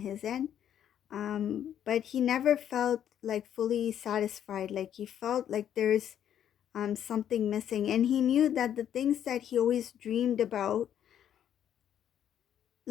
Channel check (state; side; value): quieter; right; 9.9 dB